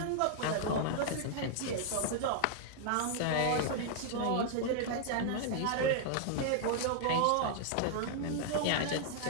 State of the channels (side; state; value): both; different; correlation -0.01